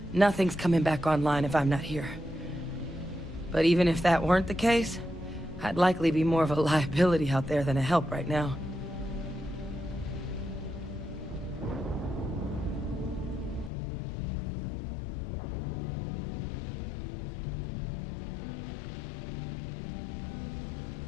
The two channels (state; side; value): drops out; right; at 13.7 s